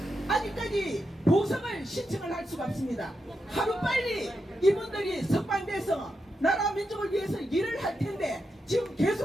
아직까지 보석을 신청을 할 수가 없습니다. 하루빨리 이분들이 석방돼서 나라 민족을 위해서 일을 할 텐데 지금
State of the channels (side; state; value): both; normal; correlation 0.86